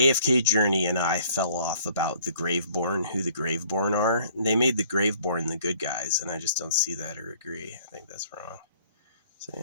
Journey and I fell off about the Graveborn, who the Graveborn are. They made the Graveborn the good guys, and I just don't see that or agree. I think that's wrong. So,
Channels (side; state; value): both; inverted; correlation -0.58